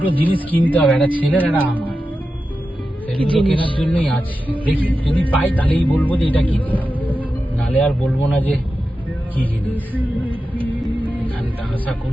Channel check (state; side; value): normal; both; correlation 0.91